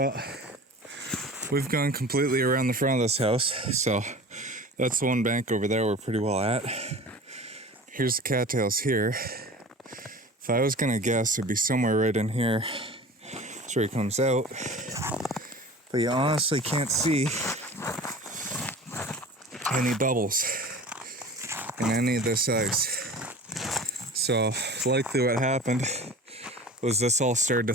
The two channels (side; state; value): both; normal; correlation 0.39